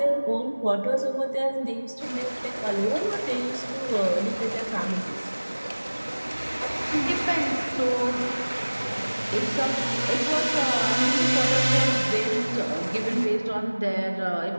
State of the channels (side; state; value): both; inverted; correlation -1.00